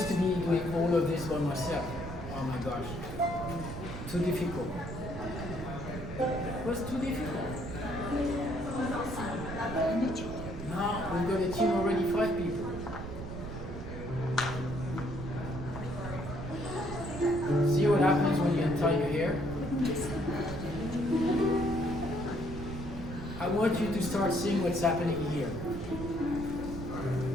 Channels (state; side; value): noise; right; rumble, 8 dB below the sound